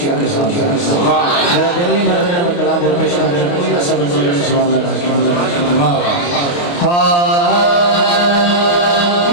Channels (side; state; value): right; late; 29 ms